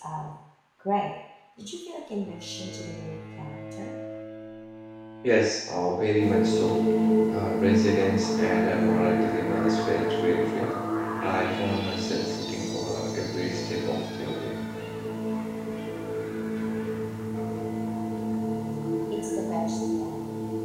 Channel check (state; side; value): identical; both; correlation 1.00